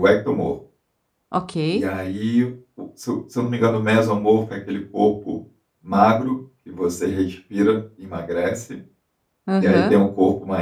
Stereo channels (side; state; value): both; identical; correlation 1.00